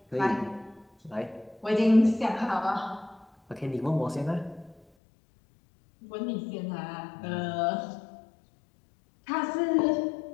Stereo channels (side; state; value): right; drops out; at 4.8 s